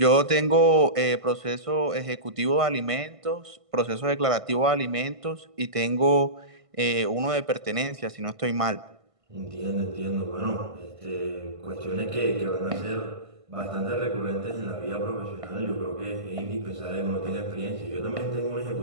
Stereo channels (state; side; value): late; left; 1.5 ms